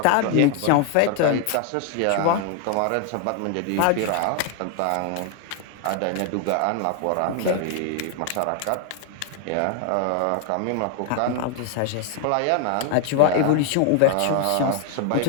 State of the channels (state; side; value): different; both; correlation 0.00